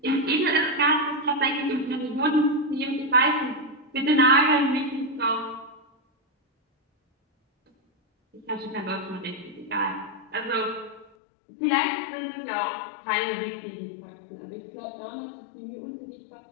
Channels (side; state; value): right; drops out; at 11.1 s